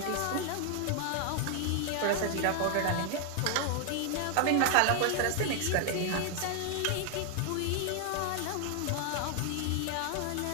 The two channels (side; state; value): both; different; correlation 0.00